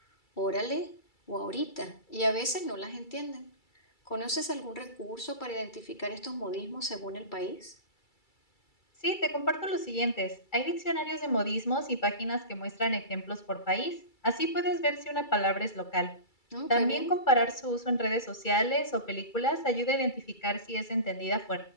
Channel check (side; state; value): right; late; 2.3 ms